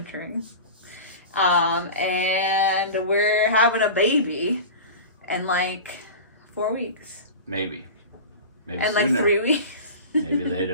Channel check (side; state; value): both; inverted; correlation -0.32